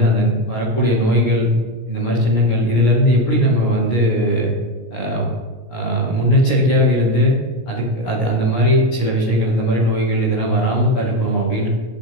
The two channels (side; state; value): right; late; 17 ms